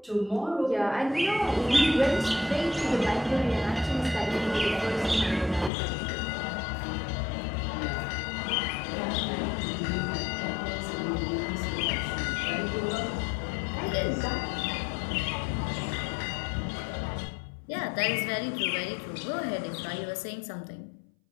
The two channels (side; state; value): right; drops out; at 5.7 s